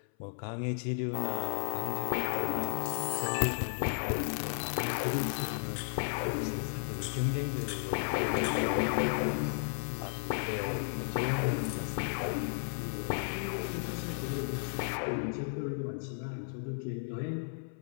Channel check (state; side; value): silent; right; 55 dB below the other